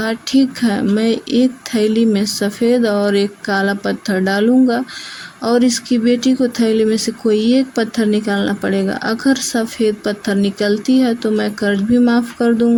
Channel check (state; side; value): identical; both; correlation 1.00